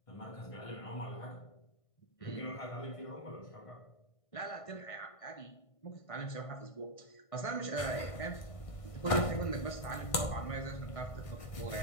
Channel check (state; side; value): late; right; 1.5 ms